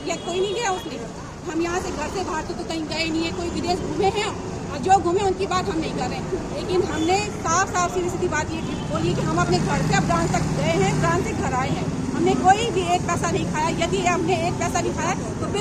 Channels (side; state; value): both; identical; correlation 1.00